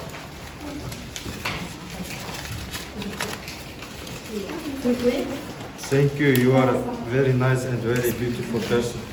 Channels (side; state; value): both; identical; correlation 1.00